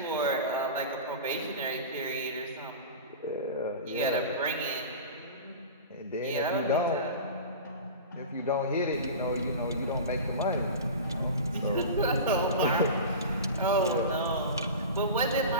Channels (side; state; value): both; inverted; correlation -0.32